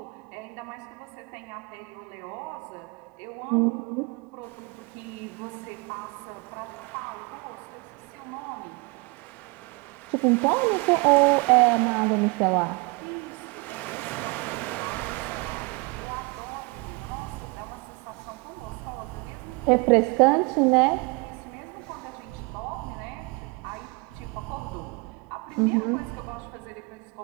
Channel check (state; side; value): quieter; left; 27.6 dB